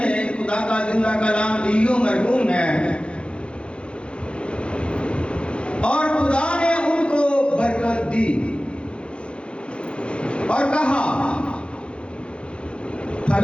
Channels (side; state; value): right; late; 0.057 ms